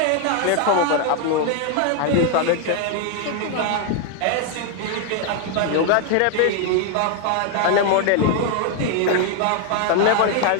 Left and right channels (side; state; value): both; different; correlation 0.01